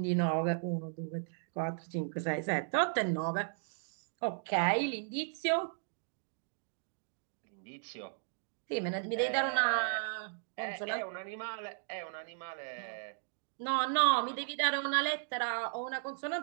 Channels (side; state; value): left; silent; digital silence